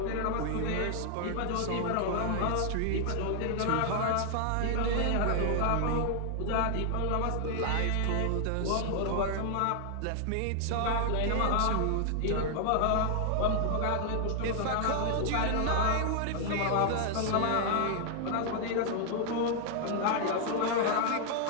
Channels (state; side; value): different; both; correlation 0.00